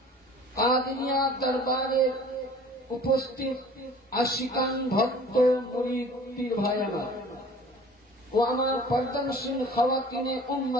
কাদিয়া দরবারে উপস্থিত আশিকান ভক্ত মুরিদ পীর ভাই আমার ও আমার পর্দানশীল খাওয়াতিনে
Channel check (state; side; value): normal; both; correlation 0.47